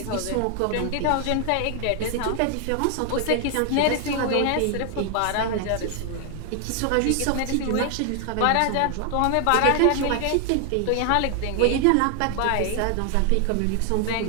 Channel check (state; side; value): different; both; correlation 0.00